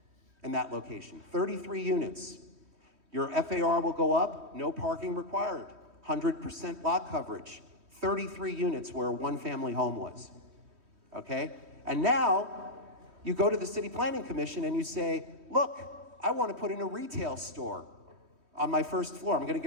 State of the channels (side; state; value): left; late; 3.1 ms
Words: in that location. 33 units. Your FAR will go up, no parking required, 100% lot coverage, 33 units where a one-family home was. Okay? And now you go to the City Planning Commission and you say, look, I want to put in a retail store on my first floor. I'm going to